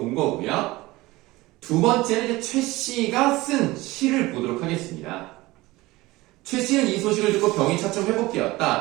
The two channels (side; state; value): left; quieter; 19.9 dB